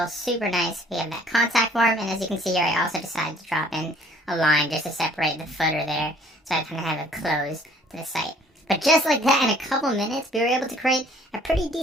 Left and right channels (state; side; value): normal; both; correlation 0.57